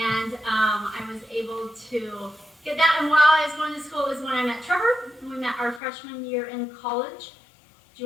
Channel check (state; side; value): drops out; right; at 5.8 s